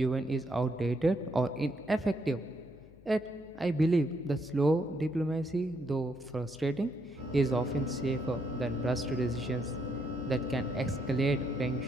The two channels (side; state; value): left; noise; hum, 23 dB below the sound